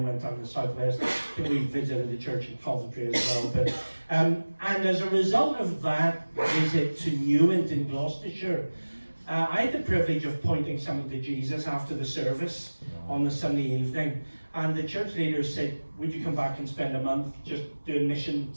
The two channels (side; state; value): both; inverted; correlation -1.00